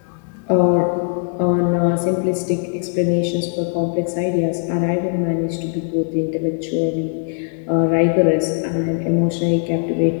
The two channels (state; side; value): silent; right; 59 dB below the other